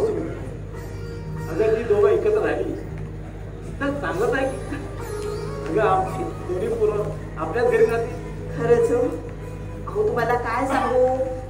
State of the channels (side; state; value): both; identical; correlation 1.00